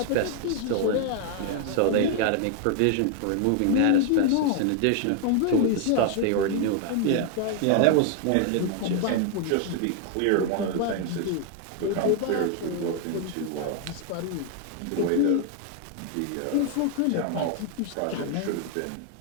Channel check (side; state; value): both; different; correlation 0.00